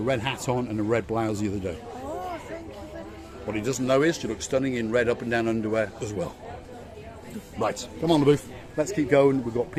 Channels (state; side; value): identical; both; correlation 1.00